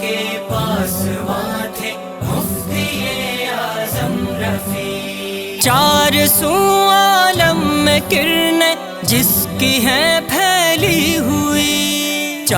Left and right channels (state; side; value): identical; both; correlation 1.00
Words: کے پاسباں تھے مفتی اعظم رفیع، چار سو عالم میں کرنیں جس کی ہیں پھیلی ہوئی،